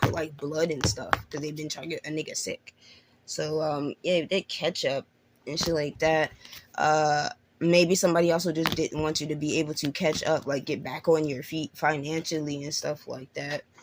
like blood and stuff because they've been trying to get a nigga sick. So yeah, they ketchup and shit like that. Maybe somebody also just didn't want you to be able to catch up, like get back on your feet financially and stuff like that.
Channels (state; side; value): identical; both; correlation 1.00